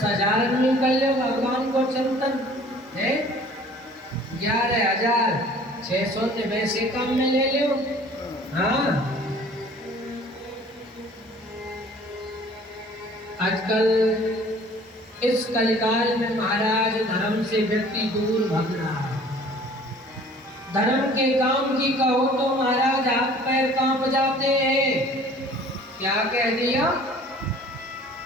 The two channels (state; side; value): normal; both; correlation 0.51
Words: में कर लो भगवान को चिंतन है, 11,600 ने वैसे काम में ले लो। हाँ, आजकल इस कलिकाल में महाराज धर्म से व्यक्ति दूर भाग रहा है। धर्म के काम की कहो तो महाराज हाथ पैर कांप जाते हैं। क्या कह दिया?